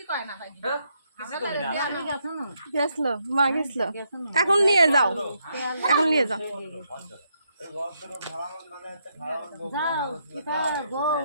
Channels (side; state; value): both; inverted; correlation -0.77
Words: কয় না ভাই কিছু করবি না গেছলো মা গেছলো এখন নিয়ে যাও এখন নিয়ে যাও যাও কিতা বল